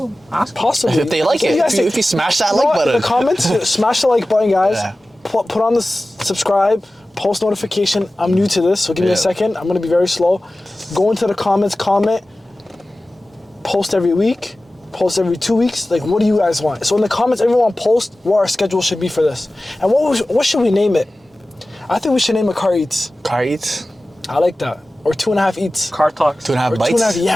them. Ask possibly. If they like it. If you smash that like button. In the comments, smash the like button, guys. Yeah. Put on the subscribe, post notification. I'm new to this, so give me a second. I'm going to be very slow. Go into the comments, comment. Post every week. Post every 2 weeks. Like, what do you guys want? So in the comments, everyone post what our schedule should be for this. And what should we name it? I think we should name it CarEats. CarEats? I like that. Or 2.5 eats. Car talks. 2.5 bites. 2.5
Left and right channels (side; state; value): both; normal; correlation 0.96